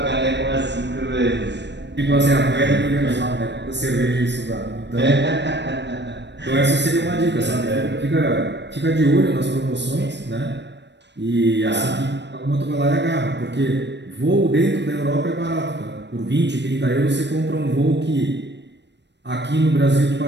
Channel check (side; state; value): left; late; 0.51 ms